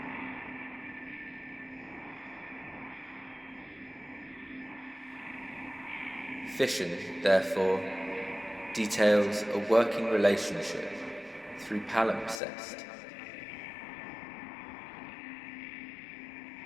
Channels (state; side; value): drops out; right; at 12.4 s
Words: Fission, therefore, details a working relationship through palimpsest.